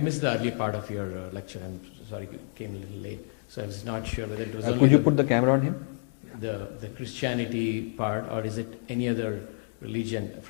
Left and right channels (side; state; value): right; silent; digital silence